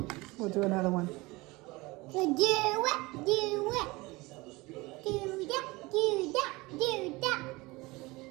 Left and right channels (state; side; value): quieter; left; 22.6 dB